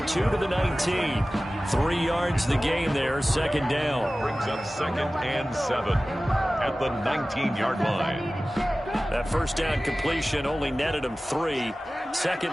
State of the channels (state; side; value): normal; both; correlation 0.97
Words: to the 19. 3 yards the gain there. 2nd down. Brings up 2nd and 7 at the 19-yard line. That 1st down completion only netted him 3. 2nd